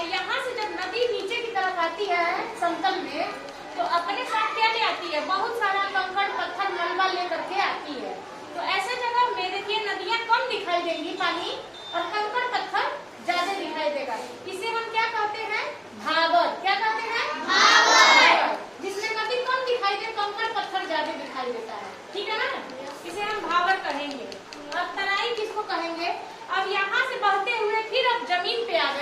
यहाँ से जब नदी नीचे की तरफ आती है समतल में, तो अपने साथ क्या ले आती है, बहुत सारा कंकड़ पत्थर मलबा लेकर के आती है। तो ऐसे जगह में देखिए नदियाँ कम दिखाई देंगी पानी, और कंकड़ पत्थर ज्यादा दिखाई देगा। इसे हम क्या कहते हैं, भावर। क्या कहते हैं, भावर। जिसमें नदी कम दिखाई दे, कंकड़ पत्थर ज्यादा दिखाई देता है, ठीक है ना, इसे हम भावर कहेंगे। अब तराई किसको कहेंगे। अब यहाँ से बहते हुए फिर अब जमीन पे आ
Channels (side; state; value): both; identical; correlation 1.00